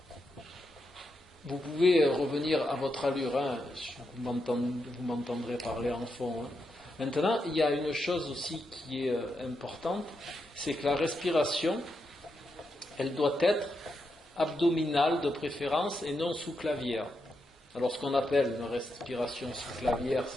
vous pouvez revenir à votre allure, hein. Vous m'entendrez parler en fond. Hein. Maintenant, il y a une chose aussi qui est importante, c'est que la respiration, elle doit être abdominale de préférence et non sous-clavière. Alors ce qu'on appelle une respiration sous-clavière,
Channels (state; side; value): normal; both; correlation 0.84